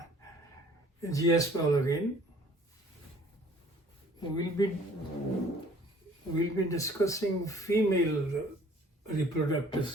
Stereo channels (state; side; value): normal; both; correlation 0.55